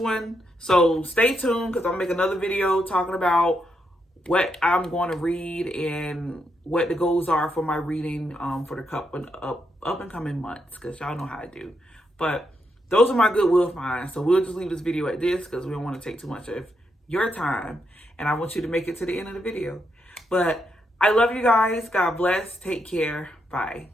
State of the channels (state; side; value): normal; both; correlation 0.81